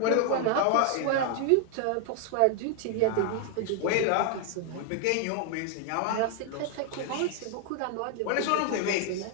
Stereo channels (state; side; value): different; both; correlation 0.00